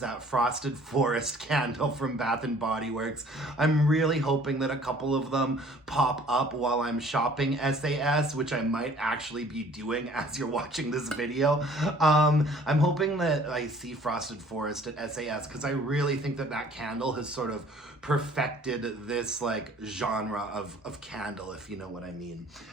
that Frosted Forest candle from Bath and Body Works. I'm really hoping that a couple of them pop up while I'm shopping SAS, which I might actually be doing as you're watching this video. I'm hoping that I see Frosted Forest at SAS, because I really think that that candle has sort of perfected this like genre of candle, if you know what I mean.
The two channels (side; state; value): both; normal; correlation 0.54